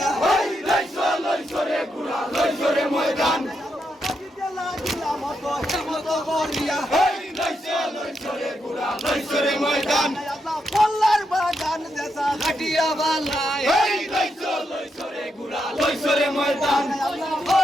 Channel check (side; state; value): both; normal; correlation 0.82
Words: লইছো রে ঘোড়া লইছো রে ময়দান এই লইছো রে ঘোড়া লইছো রে ময়দান কল্লার বাগান দেশা ঘাটিয়া বালাই এই লইছো রে ঘোড়া লইছো রে ময়দান